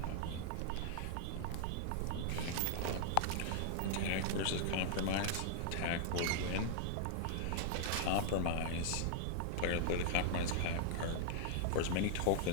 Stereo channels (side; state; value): both; different; correlation -0.01